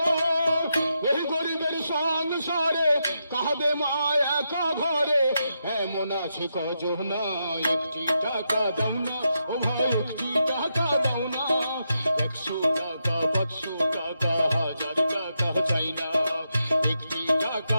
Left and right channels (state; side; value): inverted; both; correlation -0.84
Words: এই গরিবের সংসারে কাঁদে মা একা ঘরে, এমন আছে কজন, একটি টাকা দাও না ও ভাই, একটি টাকা দাও না, 100 টাকা 500 টাকা 1000 টাকা চাই না। একটি টাকা